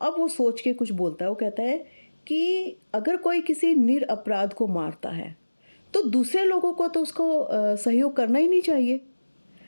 वो सोच के कुछ बोलता है, वो कहता है कि अगर कोई किसी निरपराध को मारता है तो दूसरे लोगों को तो उसको सहयोग करना ही नहीं चाहिए।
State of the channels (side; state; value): both; inverted; correlation -1.00